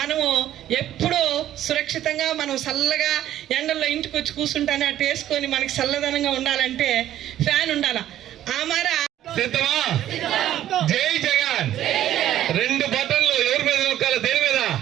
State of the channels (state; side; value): quieter; left; 12.3 dB